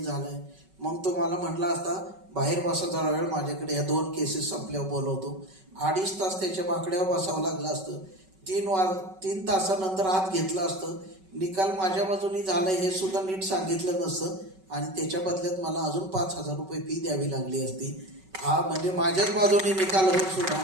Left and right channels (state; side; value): late; left; 5.3 ms